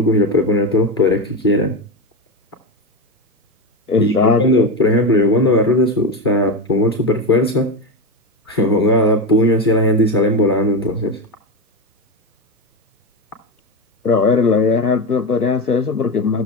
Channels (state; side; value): normal; both; correlation 0.16